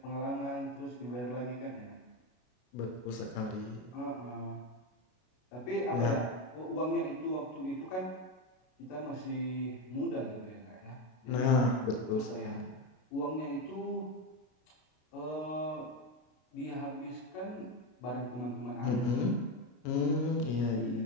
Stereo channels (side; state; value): right; late; 33 ms